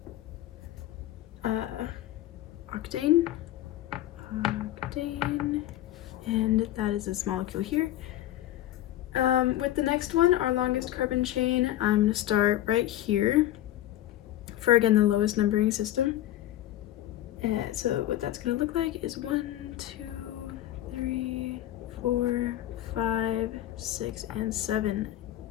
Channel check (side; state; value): right; quieter; 13.7 dB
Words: octane, and that is this molecule here. With the next one, our longest carbon chain, I'm going to start right here for, again, the lowest numbering system. So what that's going to look like is 1, 2, 3, 4, 5, 6, and 7.